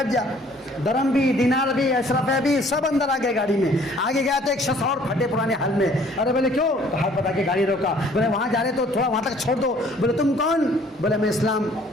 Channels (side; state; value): both; normal; correlation 0.57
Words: جا. درم بھی, دینار بھی, اشرفے بھی سب اندر آ گئے گاڑی میں. آگے گیا تو ایک شخص اور پھٹے پرانے حال میں. ارے بولے کیوں؟ ہاتھ بتا کے گاڑی روکا. بولے وہاں جا رہے تو تھوڑا وہاں تک چھوڑ دو. بولے تم کون؟ بولے میں اسلام,